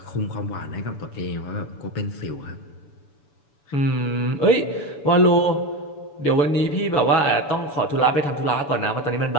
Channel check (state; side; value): late; right; 7.0 ms